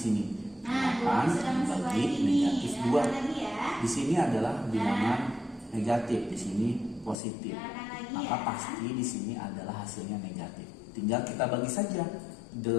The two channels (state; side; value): drops out; right; at 7.2 s